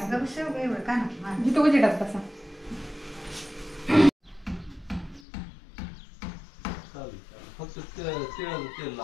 इथं उजेडात बसा.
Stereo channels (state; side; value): drops out; right; at 5.2 s